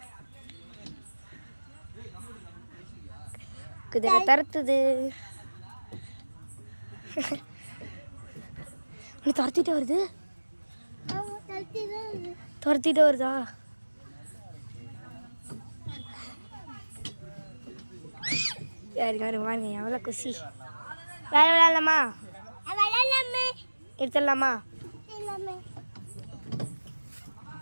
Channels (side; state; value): both; inverted; correlation -1.00